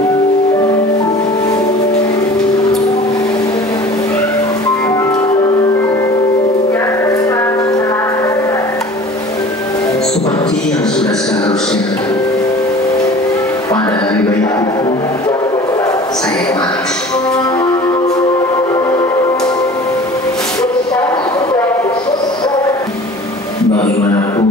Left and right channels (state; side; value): normal; both; correlation 0.44